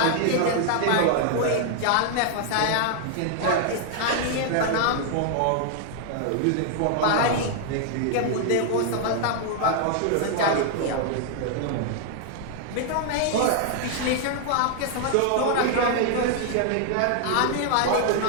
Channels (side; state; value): both; different; correlation 0.00